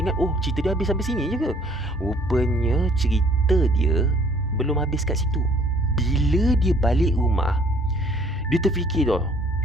ingat, oh cerita dia habis sampai sini je ke? Rupanya cerita dia belum habis kat situ. Bila dia balik rumah, dia terfikir tau.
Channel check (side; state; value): both; normal; correlation 0.58